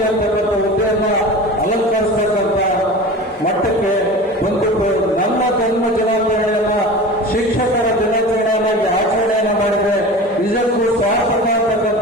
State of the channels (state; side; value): normal; both; correlation 0.34